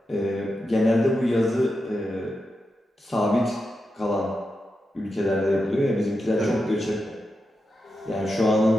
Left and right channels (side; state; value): both; normal; correlation 0.88